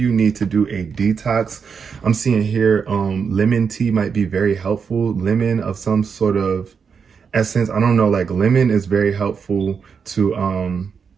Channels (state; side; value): quieter; left; 6.1 dB